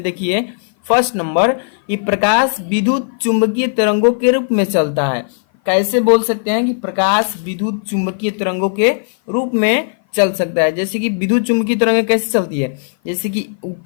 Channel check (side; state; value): right; silent; 56 dB below the other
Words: देखिए फर्स्ट नंबर, ये प्रकाश विद्युत चुंबकीय तरंगों के रूप में चलता है। कैसे बोल सकते हैं कि प्रकाश विद्युत चुंबकीय तरंगों के रूप में चल सकता है। जैसे कि विद्युत चुंबकीय तरंगें कैसे चलती है, जैसे कि